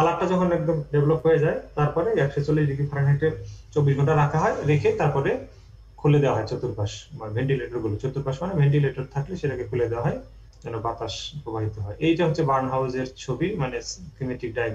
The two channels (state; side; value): identical; both; correlation 1.00